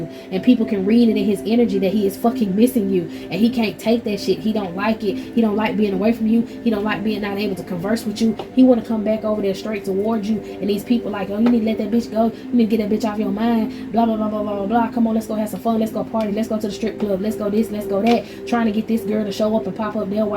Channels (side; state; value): both; identical; correlation 1.00